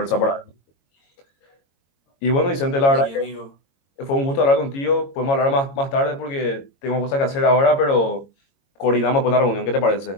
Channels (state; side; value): late; right; 22 ms